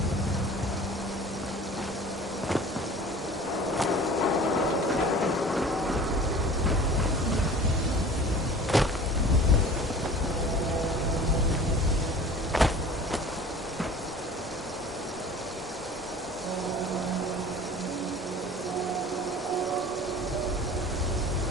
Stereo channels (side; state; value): both; normal; correlation 0.43